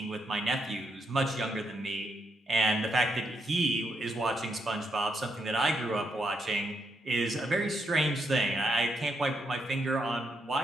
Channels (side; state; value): both; normal; correlation 0.79